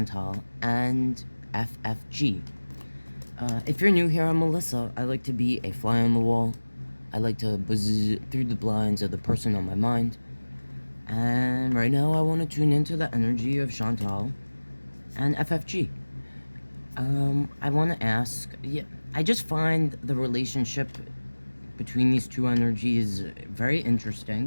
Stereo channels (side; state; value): both; inverted; correlation -1.00